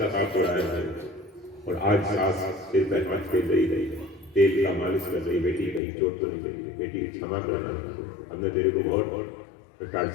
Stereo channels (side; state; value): right; drops out; at 5.8 s